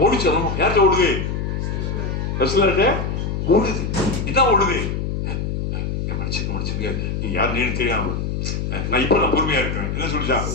ஓடிச்சு? யார்கிட்ட ஓடுது? ரசூலுல்லாஹ்ட்ட ஓடுது. இதான் ஓடுது. மன்னிச்சுங்க நீ யாருன்னு தெரியாம நான் இப்ப பொறுமையா இருக்கிறேன். என்ன சொல்லிச்சான்?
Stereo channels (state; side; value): noise; left; hum, 2 dB below the sound